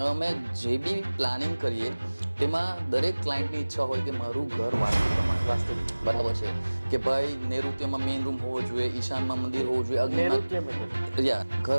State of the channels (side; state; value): both; inverted; correlation -1.00